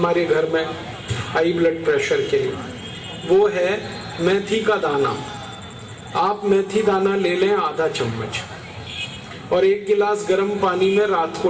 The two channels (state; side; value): identical; both; correlation 1.00